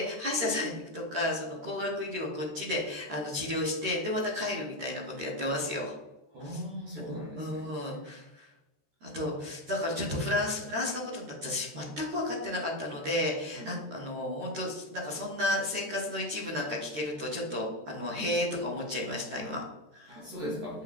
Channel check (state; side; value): late; left; 13 ms